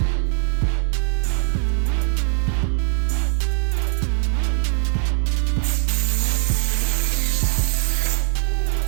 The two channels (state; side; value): silent; left; 63 dB below the other